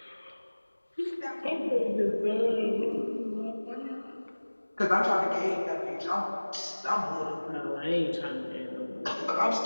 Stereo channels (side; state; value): both; inverted; correlation -1.00